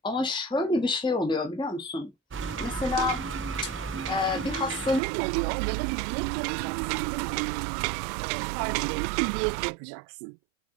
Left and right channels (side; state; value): left; drops out; at 5.0 s